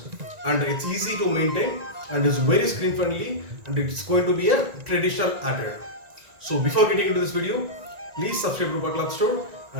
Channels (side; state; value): left; late; 1.9 ms